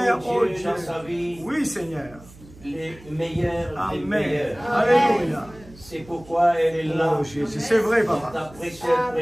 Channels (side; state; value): right; noise; hum, 21 dB below the sound